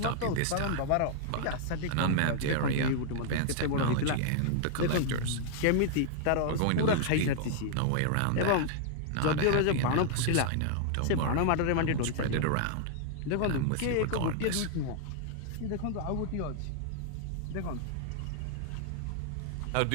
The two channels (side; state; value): both; different; correlation -0.01